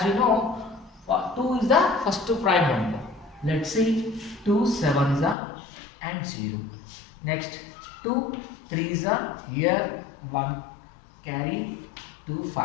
you know, 2 is the first prime number. Let's see, 2 sevens are and 0. Next, 2 threes are here, 1 carry, 2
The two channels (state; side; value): drops out; right; at 5.4 s